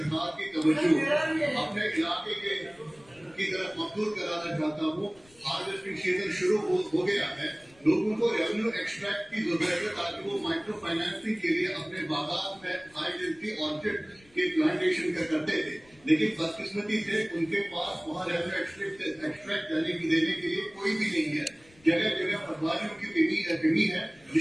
की तवज्जो अपने इलाके की तरफ मबूल कराना चाहता हूँ। हार्वेस्टिंग सीजन शुरू हो गया है, लोगों को रेवेन्यू एक्सट्रैक्ट की जरूरत है ताकि वो माइक्रो फाइनेंसिंग के लिए अपने बागात में हाई डेंसिटी ऑर्चिड के प्लांटेशन करते थे, लेकिन बदकिस्मती से उनके पास वहाँ रेवेन्यू एक्सट्रैक्ट देने के लिए कोई भी नहीं है। जगह जगह पटवारियों की कमी है,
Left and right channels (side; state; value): left; noise; rumble, 28 dB below the sound